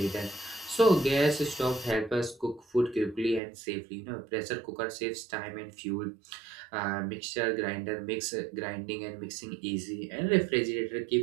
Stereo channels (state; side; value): drops out; left; at 3.4 s